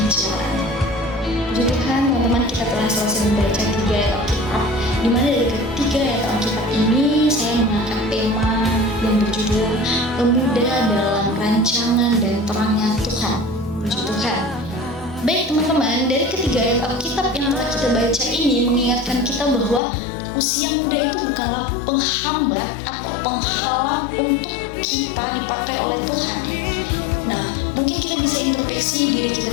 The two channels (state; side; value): drops out; right; at 19.8 s